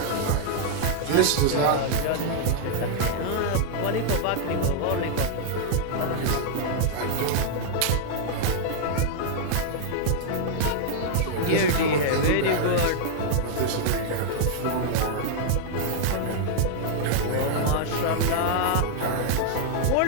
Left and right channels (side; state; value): both; different; correlation -0.01